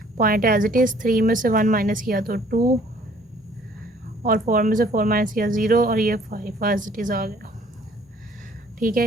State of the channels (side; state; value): both; normal; correlation 0.58